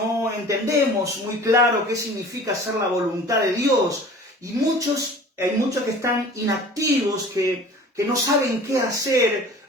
entendemos muy claro qué significa hacer la voluntad de Dios, y hay muchos que están inactivos, que no saben qué hacer,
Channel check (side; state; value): both; normal; correlation 0.44